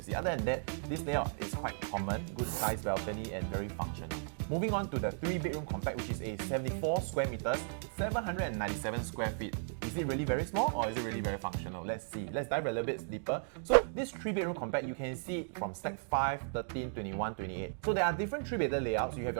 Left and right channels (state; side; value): silent; left; digital silence